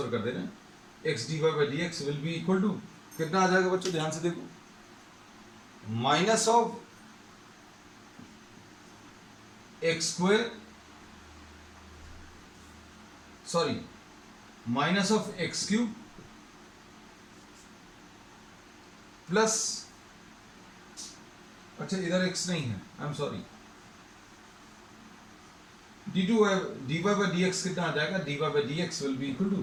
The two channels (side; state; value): both; identical; correlation 1.00